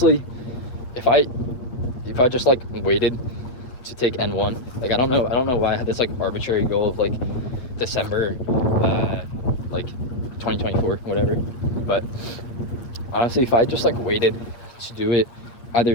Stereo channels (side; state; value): right; late; 8.7 ms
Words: if I just like waited to take N1, like I don't know why I had this like arbitrary goal of like December like 2024, whatever. But honestly, if I just like waited to do it either